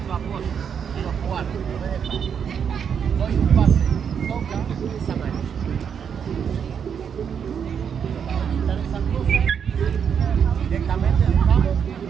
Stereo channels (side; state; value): left; quieter; 7.5 dB